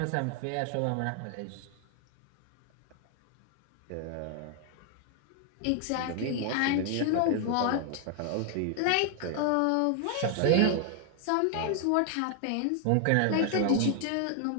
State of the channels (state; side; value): different; both; correlation 0.00